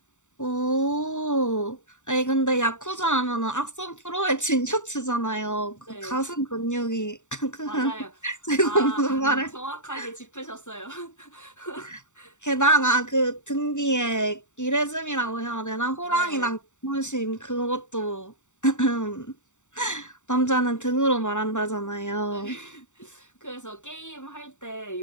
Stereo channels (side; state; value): right; late; 0.84 ms